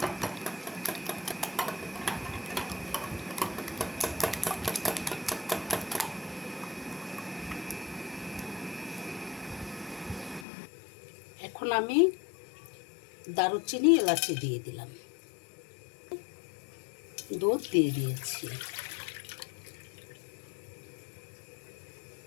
এখন আমি দারুচিনি এলাচি দিয়ে দিলাম, দুধ দিয়ে দিয়েছি।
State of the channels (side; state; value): right; drops out; at 10.5 s